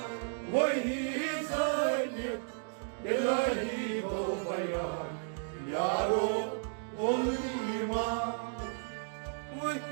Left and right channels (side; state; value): left; silent; digital silence